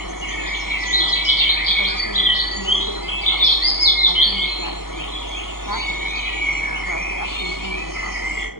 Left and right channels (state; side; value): late; right; 0.92 ms